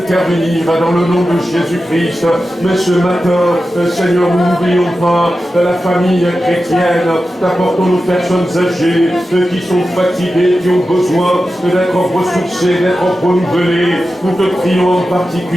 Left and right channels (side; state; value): both; normal; correlation 0.92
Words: dans le nom de Jésus-Christ. Mais ce matin, Seigneur, nous n'oublions pas la famille chrétienne. T'apportons nos personnes âgées qui sont fatiguées, qui ont besoin d'être ressourcées, d'être renouvelées. Nous te prions en